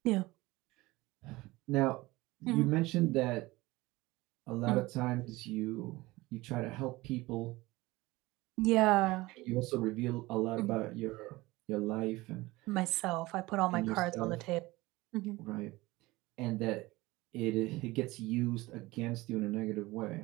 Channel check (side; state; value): left; quieter; 20.4 dB